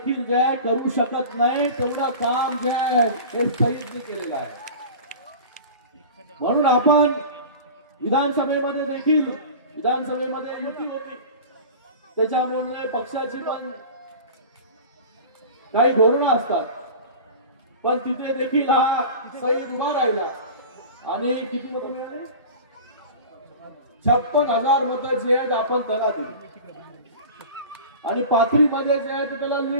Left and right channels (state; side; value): inverted; both; correlation -0.35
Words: जे करू शकत नाही तेवढं काम जे आहे हे सईदने केलेलं आहे. म्हणून आपण विधानसभेमध्ये देखील, विधानसभेमध्ये युती होती, त्याच्यामुळे पक्षाची पण काही धोरणं असतात, पण तिथे देखील हा सईद उभा राहिला आणि किती मतं मिळाली? 56,000 मतं जी आहेत आपण त्याला दिली आणि पाथरीमध्ये जे आहे त्याला